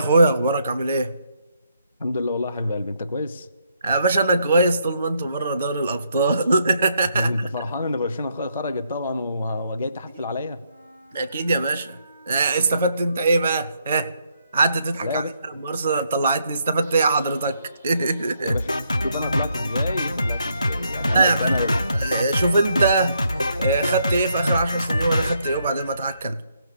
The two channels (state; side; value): inverted; both; correlation -0.75